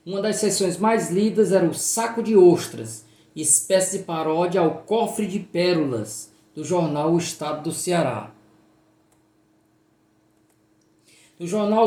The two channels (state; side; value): identical; both; correlation 1.00